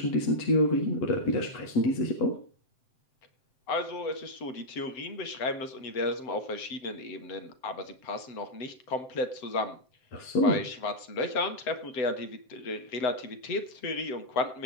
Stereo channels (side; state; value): right; late; 7.7 ms